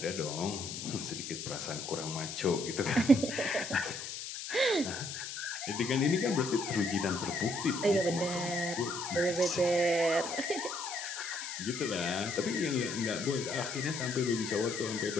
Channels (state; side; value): noise; left; hiss, 7 dB below the sound